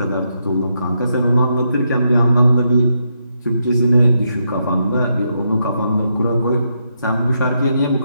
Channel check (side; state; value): both; inverted; correlation -0.81